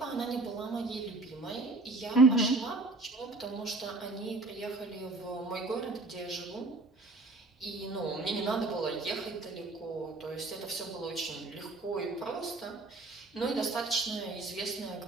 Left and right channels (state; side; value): quieter; left; 3.1 dB